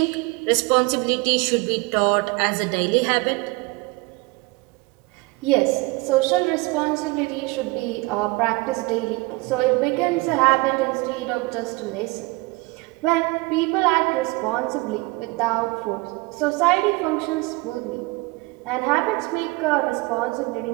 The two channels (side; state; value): left; quieter; 24.7 dB